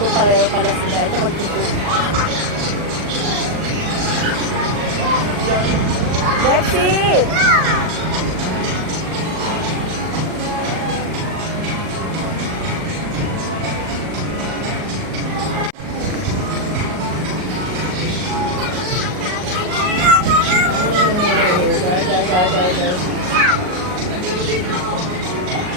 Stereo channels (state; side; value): late; left; 38 ms